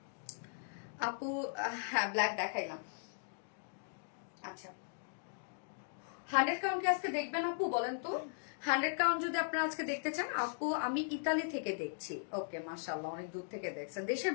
আপু। হ্যাঁ ব্ল্যাক দেখাইলাম। আচ্ছা 100 কাউন্ট কি আজকে দেখবেন আপু বলেন তো? 100 কাউন্ট যদি আপনারা আজকে দেখতে চান আপু, আমি ইতালি থেকে দেখছি। ওকে মাশাআল্লাহ, অনেক দূর থেকে দেখছেন। দেশের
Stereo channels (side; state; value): right; silent; digital silence